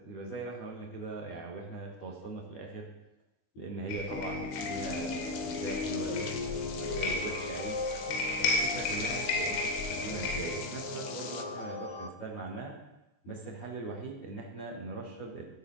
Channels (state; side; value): late; right; 17 ms